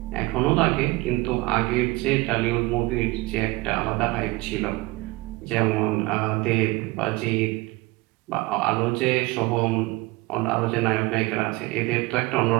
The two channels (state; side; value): quieter; left; 22.2 dB